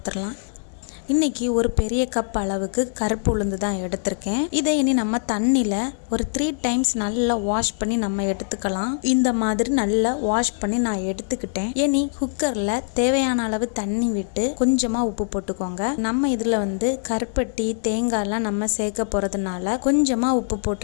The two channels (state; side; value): silent; right; digital silence